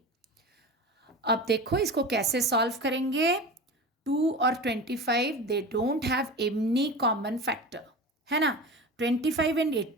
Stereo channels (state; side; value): normal; both; correlation 0.30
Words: अब देखो इसको कैसे सॉल्व करेंगे। 2 और 25 they don't have any common factor, है ना। 25 एंड